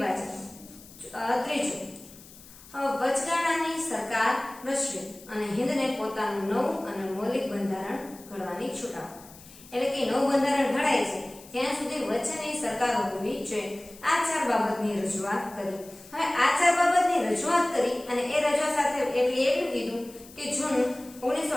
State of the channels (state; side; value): noise; left; hiss, 20 dB below the sound